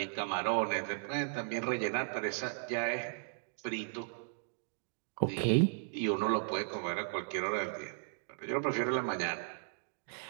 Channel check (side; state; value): left; silent; digital silence